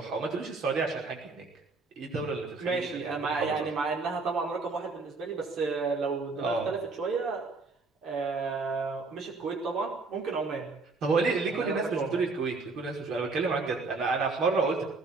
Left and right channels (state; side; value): quieter; left; 3.9 dB